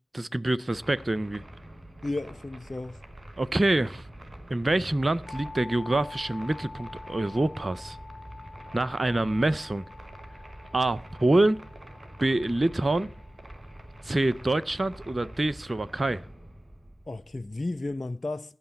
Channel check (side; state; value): both; normal; correlation 0.97